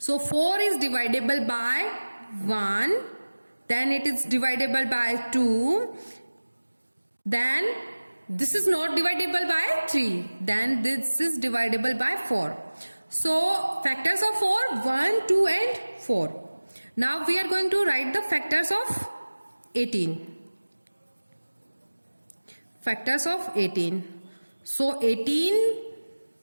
4 is divisible by 1, then it is divisible by 2, then this is not divisible by 3, then this is divisible by 4. So, factors of 4, 1, 2 and 4. Now, we are going to write the factors of 18. Factors of 18. So, 18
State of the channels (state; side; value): inverted; both; correlation -1.00